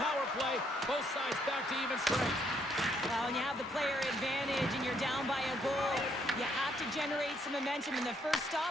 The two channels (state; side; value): normal; both; correlation 0.71